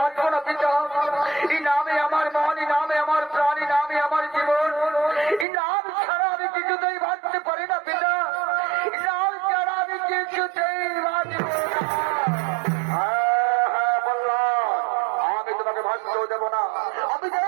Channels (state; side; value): drops out; left; at 5.5 s